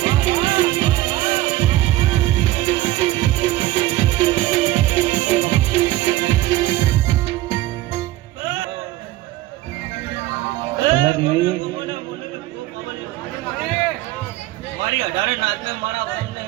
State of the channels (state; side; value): quieter; left; 16.5 dB